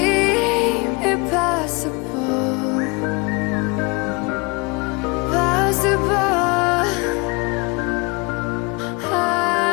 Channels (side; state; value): right; quieter; 28.0 dB